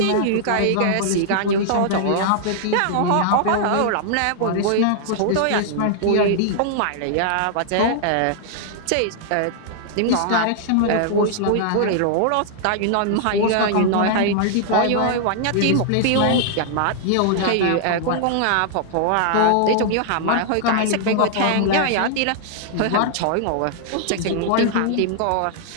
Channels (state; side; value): different; both; correlation -0.01